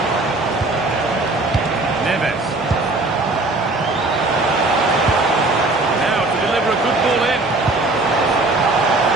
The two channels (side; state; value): left; quieter; 3.0 dB